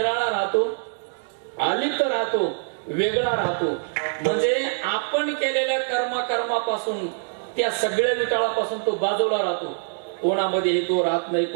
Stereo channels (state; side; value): silent; left; digital silence